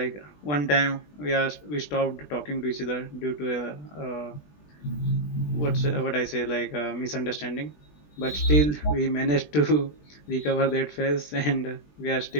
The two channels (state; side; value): late; right; 20 ms